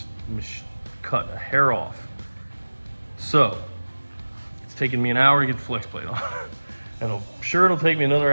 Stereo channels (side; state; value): both; inverted; correlation -1.00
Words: cut a hair off. So it's taken me an hour to get the flex plate on. And I'm sure it'll take me another